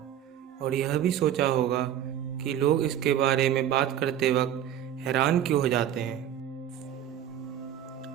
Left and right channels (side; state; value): left; quieter; 10.5 dB